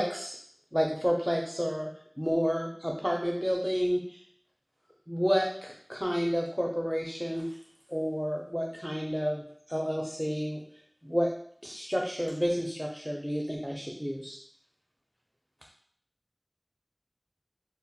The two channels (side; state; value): both; identical; correlation 1.00